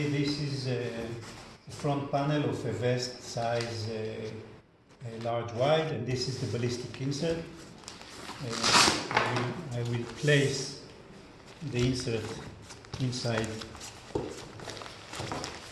this is a front panel of a vest size large wide, and this is the ballistic insert. I will place the insert inside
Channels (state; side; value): identical; both; correlation 1.00